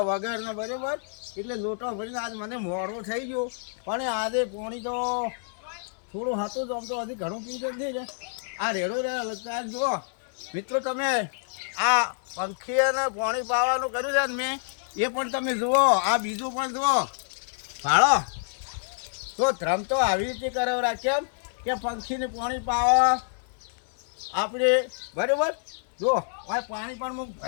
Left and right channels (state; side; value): silent; right; 59 dB below the other